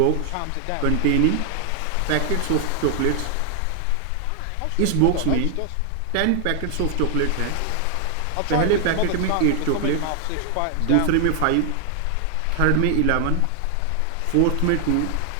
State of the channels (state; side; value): different; both; correlation 0.00